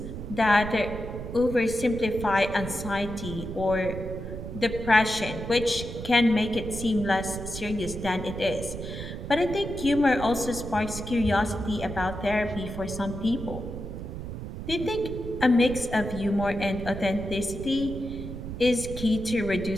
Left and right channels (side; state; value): right; noise; rumble, 8 dB below the sound